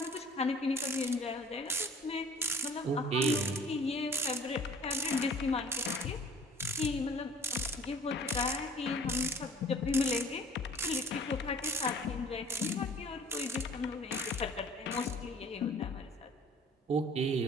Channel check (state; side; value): normal; both; correlation 0.50